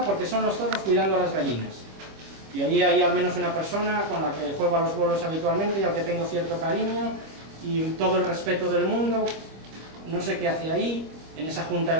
porque son los zorros cuidando a las gallinas. Y allí hay al menos una persona con la que juego a los bolos habitualmente y al que tengo cierto cariño y todo el respeto del mundo. No sé qué hace ahí, en esa Junta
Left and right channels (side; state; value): left; late; 25 ms